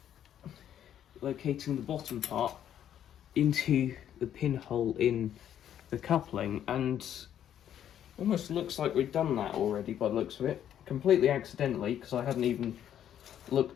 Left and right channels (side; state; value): right; quieter; 10.2 dB